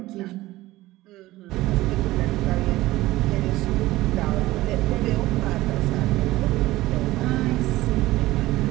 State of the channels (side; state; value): left; quieter; 17.5 dB